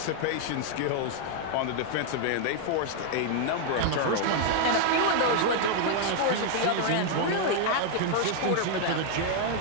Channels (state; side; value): different; both; correlation 0.00